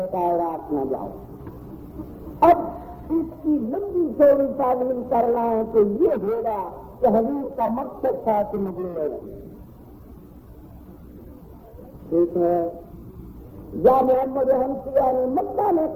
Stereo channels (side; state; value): both; identical; correlation 1.00